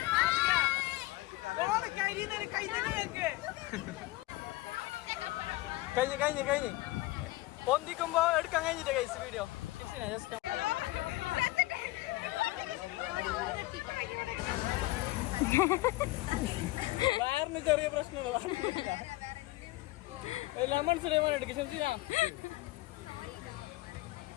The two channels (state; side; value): quieter; right; 19.2 dB